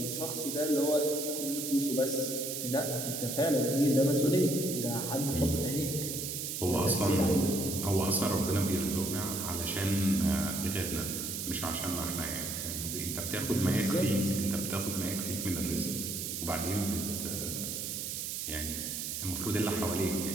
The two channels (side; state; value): right; noise; hiss, 4 dB below the sound